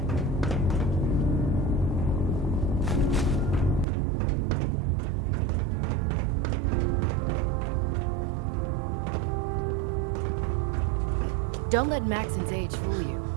Don't let Maxon's age fool you.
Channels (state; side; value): drops out; left; at 3.9 s